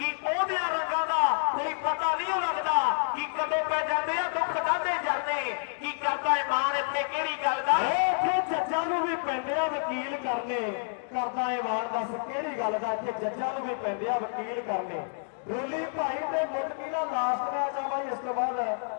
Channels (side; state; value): right; silent; digital silence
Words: ਉਹਦਿਆਂ ਰੰਗਾਂ ਦਾ ਕੋਈ ਪਤਾ ਨਹੀਂ ਲੱਗਦਾ, ਕਿ ਕਦੋਂ ਪੈ ਜਾਂਦੇ ਆ ਦੁੱਖ ਦਾਦੇ ਜਰਦੇ, ਕੀ ਕਰਦਾ ਇਮਾਨ ਇੱਥੇ ਕਿਹੜੀ ਗੱਲ ਦਾ। जज्जां नूं भी पैंदे आ वकील करने करदा ए वार दस किहड़ी गल दा इत्थे जज्जां नूं भी पैंदे आ वकील करने रोली भाई ते मुदकी दा लास्ट मैच आ भाई इस तो बाद